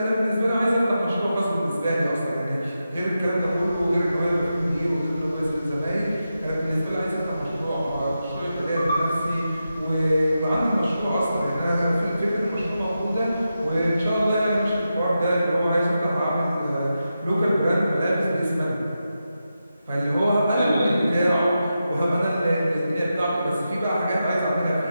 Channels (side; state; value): both; inverted; correlation -0.89